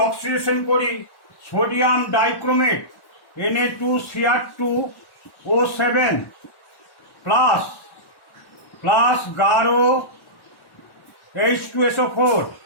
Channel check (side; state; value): right; late; 1.1 ms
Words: অক্সিডেশন করি সোডিয়াম ডাইক্রোমেট Na2Cr2O7 প্লাস গাঢ় H2SO4